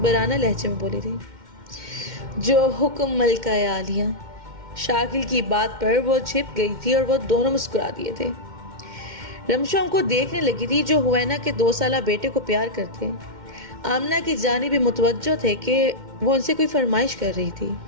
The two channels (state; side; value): late; left; 2.1 ms